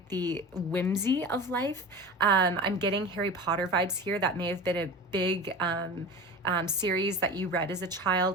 the whimsy of life. I'm getting Harry Potter vibes here. That may have been a big series that you read as a child.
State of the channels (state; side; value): normal; both; correlation 0.33